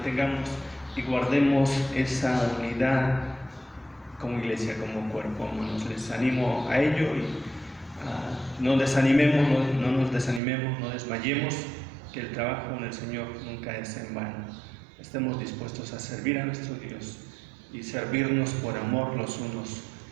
y guardemos esa unidad como iglesia, como cuerpo, hermanos. Les animo a ello y no desanimemos, no nos desanimemos, no desmayemos, que el trabajo en el Señor nunca es en vano. Estemos dispuestos a servir a nuestro Dios y servirnos por amor los unos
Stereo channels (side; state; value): left; drops out; at 10.4 s